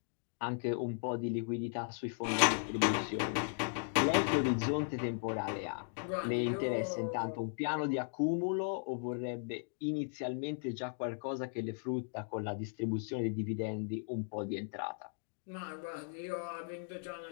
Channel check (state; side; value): silent; right; digital silence